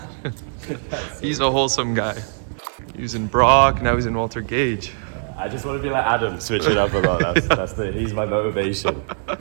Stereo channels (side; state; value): left; silent; digital silence